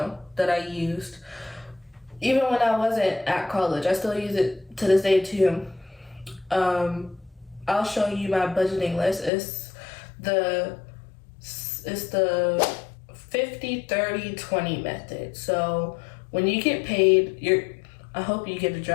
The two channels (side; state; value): right; drops out; at 9.3 s